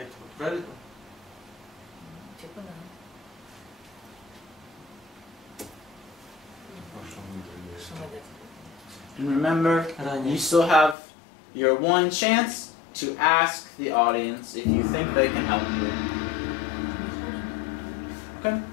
правильно? Типа да. And remember, Ранее. you still have your one chance to ask the audience if you think they can help you. Okay?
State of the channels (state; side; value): drops out; right; at 11.0 s